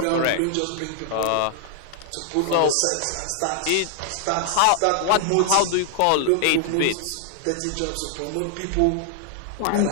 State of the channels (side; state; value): both; different; correlation 0.00